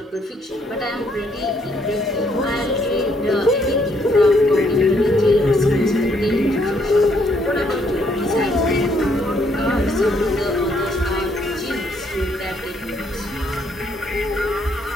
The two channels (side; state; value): both; normal; correlation 0.70